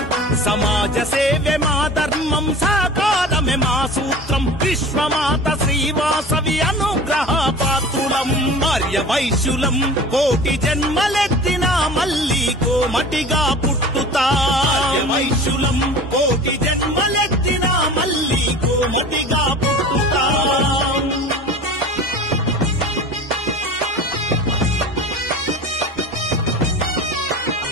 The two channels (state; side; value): normal; both; correlation 0.38